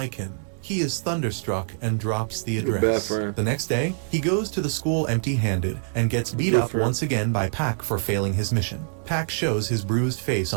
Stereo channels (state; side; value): silent; left; digital silence